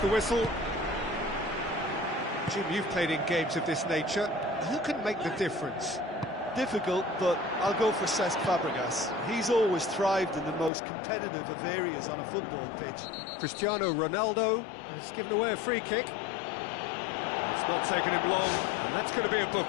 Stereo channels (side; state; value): right; drops out; at 10.7 s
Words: whistle. Jim, you've played in games of this nature. Who can make the difference? Difficult, but I'll go for Cesc Fabregas. He's always thrived in the most competitive of areas on a football pitch. Cristiano Ronaldo has given away a free kick. It's not taken him long, and that's going to be a